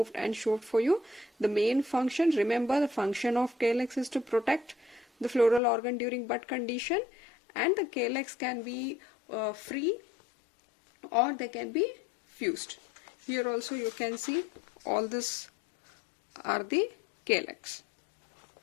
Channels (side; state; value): right; drops out; at 5.6 s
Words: and showed for you. The main function, remember the function of calyx is to protect the floral organ during bud condition, and the calyx can be free or they can be fused. Here also you can see all this are the calyx.